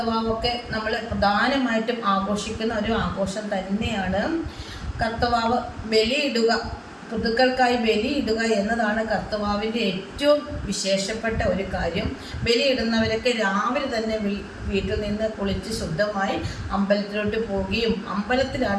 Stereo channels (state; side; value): identical; both; correlation 1.00